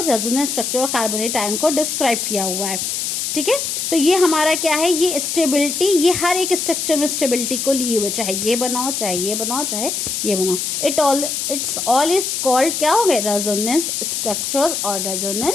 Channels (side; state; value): left; noise; hiss, 2 dB below the sound